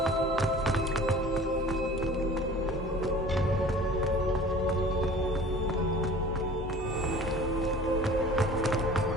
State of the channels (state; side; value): normal; both; correlation 0.44